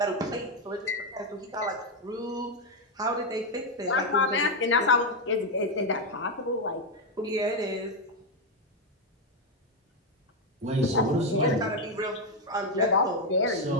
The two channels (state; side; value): normal; both; correlation 0.05